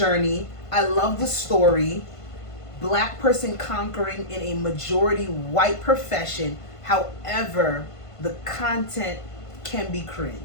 I love the story. Black person conquering in a majority white profession. However, the content can be cringe.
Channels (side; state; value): right; late; 1.5 ms